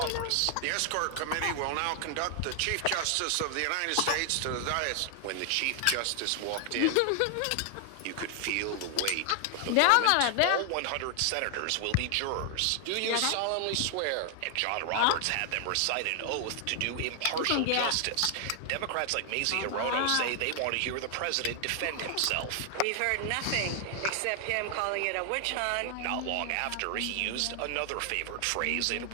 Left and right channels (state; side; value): different; both; correlation 0.00